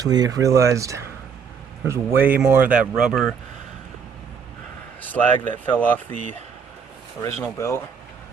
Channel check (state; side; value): quieter; left; 6.5 dB